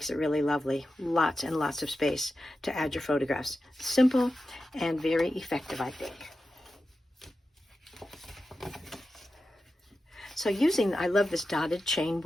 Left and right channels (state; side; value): normal; both; correlation 0.92